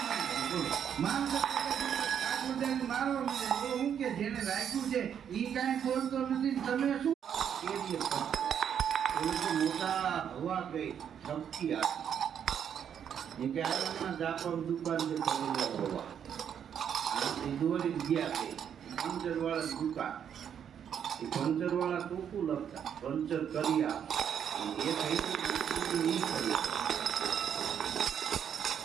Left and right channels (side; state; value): left; quieter; 8.5 dB